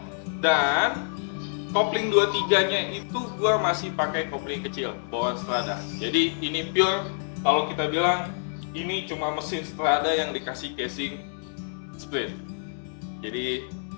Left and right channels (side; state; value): right; silent; digital silence